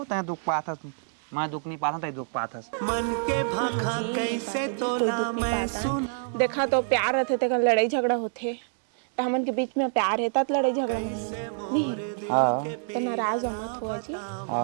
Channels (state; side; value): silent; left; digital silence